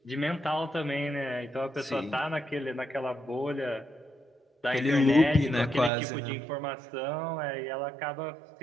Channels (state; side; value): drops out; left; at 5.9 s